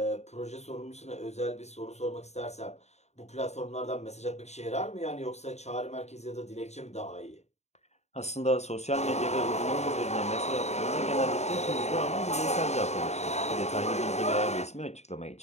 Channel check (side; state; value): right; late; 0.32 ms